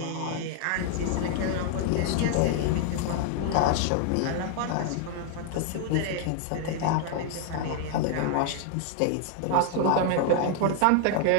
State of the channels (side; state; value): both; different; correlation 0.00